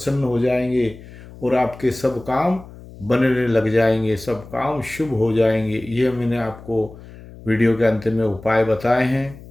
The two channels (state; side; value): noise; left; hum, 18 dB below the sound